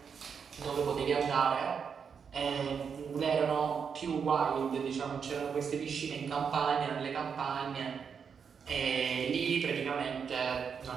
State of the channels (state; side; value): quieter; left; 6.6 dB